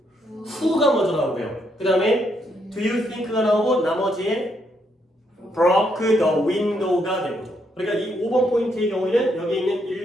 who가 먼저 나오고요. 그 다음에 do you think가 나오고 나머지에 broke the window가 되는 거죠. 그러니까 이 5번 포인트의 경우에는 여기 있는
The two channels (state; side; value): normal; both; correlation 0.75